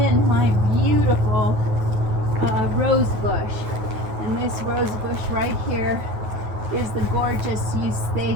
my beautiful rose bush. And this rose bush right here is the gorgeous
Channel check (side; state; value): left; late; 9.4 ms